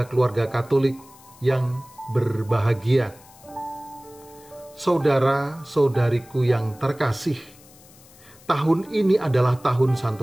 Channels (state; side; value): noise; left; hiss, 24 dB below the sound